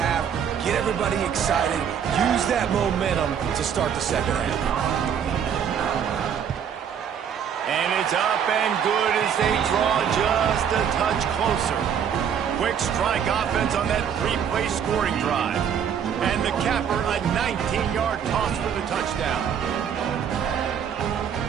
get everybody excited, use that momentum to start the second half. And it's up and good as they draw just a touch closer. Quick strike offense on that 3-play scoring drive. And the capper, a 19-yard toss for the touchdown.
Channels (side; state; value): left; quieter; 8.1 dB